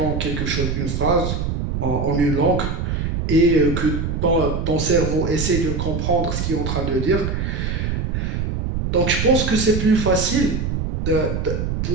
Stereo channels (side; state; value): right; noise; rumble, 2 dB below the sound